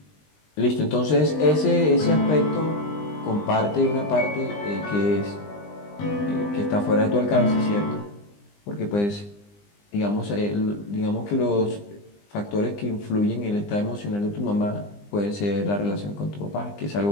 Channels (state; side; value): late; right; 20 ms